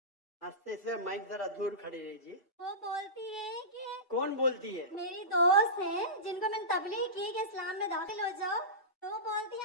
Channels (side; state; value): both; normal; correlation -0.20